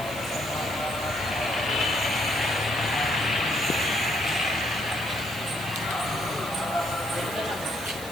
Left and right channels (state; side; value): noise; right; hiss, 13 dB below the sound